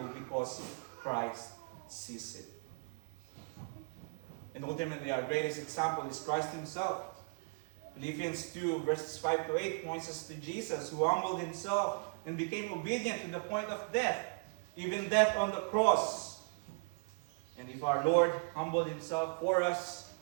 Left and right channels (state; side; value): silent; left; 53 dB below the other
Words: because Christ sees it. And ultimately, our greatest example is Christ himself. Philippians 2:5-8 points us to Jesus, who humbled himself and became obedient to the point of death, even death on the cross. And if our Lord humbled himself for us,